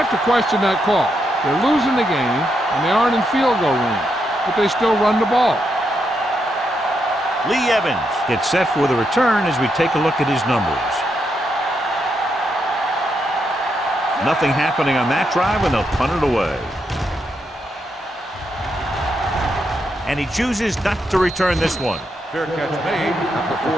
have to question that call. They're losing the game, and they aren't in field goal range, but they still run the ball. Lee Evans gets set for the return as we take a look at his numbers. Nothing happening on that drive, and they'll punt it away. And he chooses not to return this one. Fair catch made at the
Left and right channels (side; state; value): both; normal; correlation 0.81